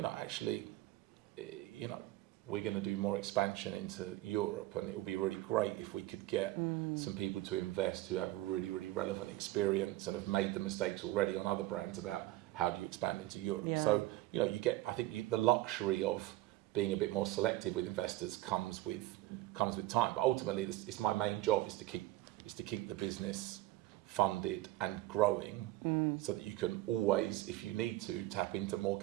actually, we're going to do more expansion into Europe, and it would be really great if we could get some people to invest who have really, really relevant experience and have made the mistakes already on other brands about how do you expand into Europe. Yeah. So, you get, I think the luxury of being a bit more selective with investors comes with time. But ultimately, it's my main job is to keep the business funded and growing, so that you can always, if you need to, tap into more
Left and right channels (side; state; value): left; quieter; 16.8 dB